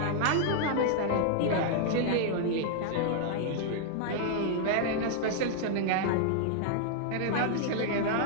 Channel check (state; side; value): different; both; correlation -0.01